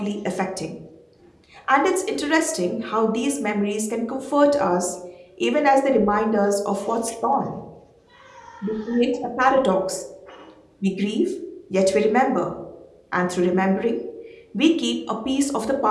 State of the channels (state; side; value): identical; both; correlation 1.00